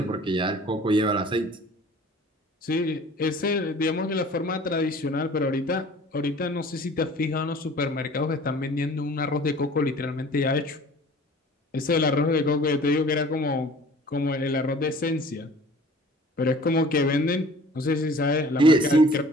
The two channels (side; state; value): both; normal; correlation 0.48